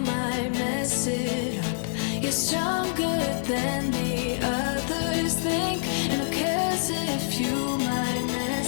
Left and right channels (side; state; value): right; silent; digital silence